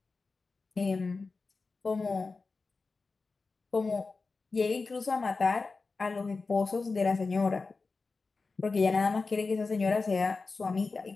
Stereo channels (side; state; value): right; quieter; 4.1 dB